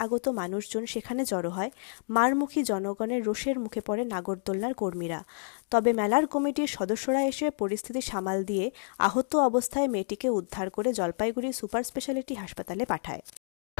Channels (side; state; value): right; silent; digital silence